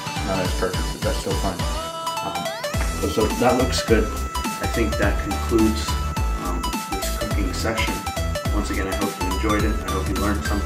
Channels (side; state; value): both; identical; correlation 1.00